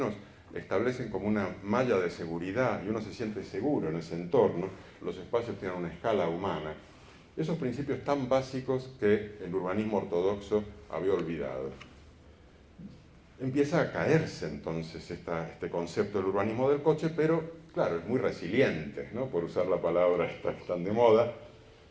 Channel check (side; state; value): both; identical; correlation 1.00